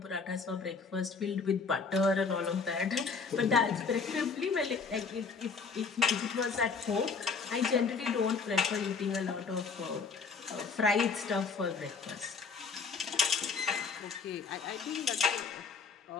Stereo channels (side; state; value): right; quieter; 5.0 dB